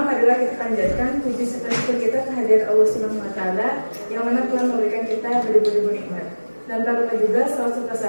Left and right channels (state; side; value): inverted; both; correlation -1.00